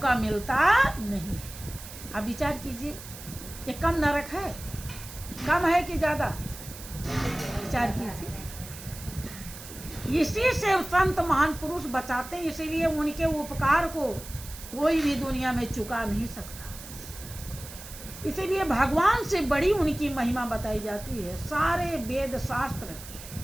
मिलता नहीं। अब विचार कीजिए, ये कम नरक है? कम है कि ज्यादा? विचार कीजिए। इसी से संत महान पुरुष बचाते, इसीलिए उनके उपकार को कोई भी दुनिया में चुका नहीं सकता। इसीलिए भगवान से बड़ी उनकी महिमा बताई जाती है। सारे वेद शास्त्र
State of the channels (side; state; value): right; noise; hiss, 14 dB below the sound